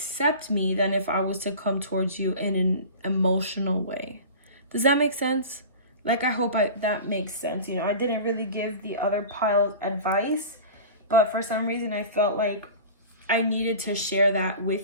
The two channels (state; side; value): inverted; both; correlation -0.36